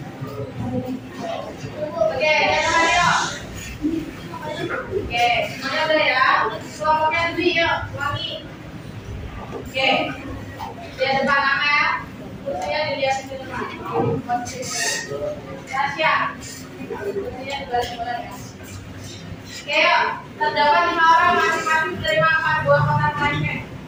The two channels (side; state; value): both; identical; correlation 1.00